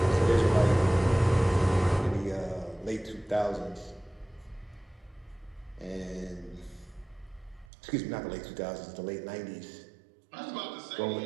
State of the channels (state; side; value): drops out; left; at 7.7 s